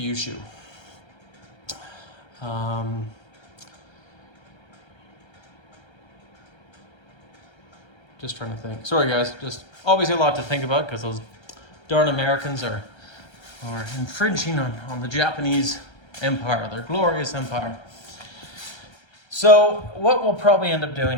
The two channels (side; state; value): right; late; 1.3 ms